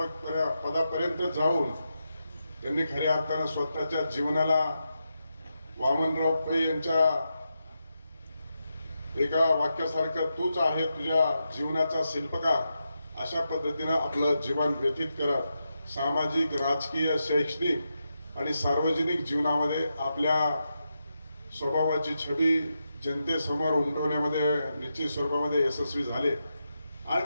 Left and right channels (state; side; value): inverted; both; correlation -0.87